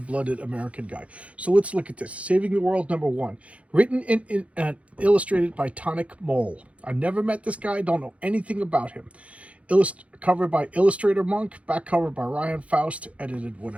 American guy. So let's look at this. Saving the World number 1. Written and illustrated by Tonic Mole. I've never met this guy. Don't know anything about him. Cover by Illustrator Monk. Back cover by Ryan Faust. Edited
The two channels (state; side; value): late; left; 0.064 ms